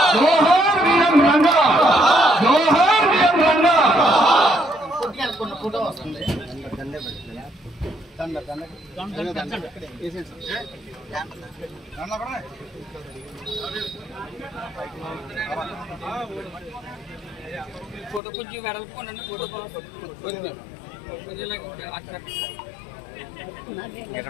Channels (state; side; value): drops out; right; at 18.2 s